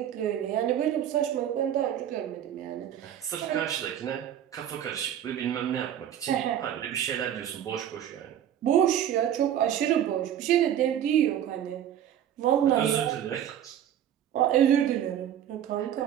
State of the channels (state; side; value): quieter; left; 10.4 dB